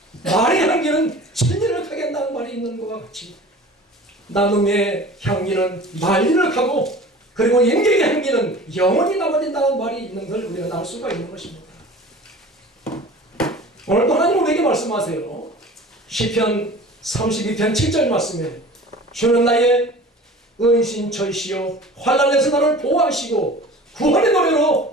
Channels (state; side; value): normal; both; correlation 0.41